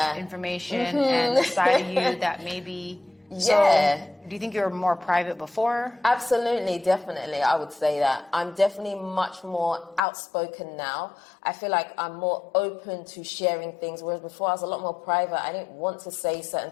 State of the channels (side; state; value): right; drops out; at 10.0 s